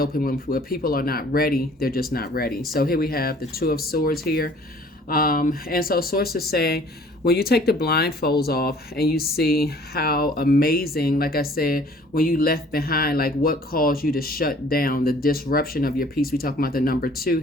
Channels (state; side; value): normal; both; correlation 0.53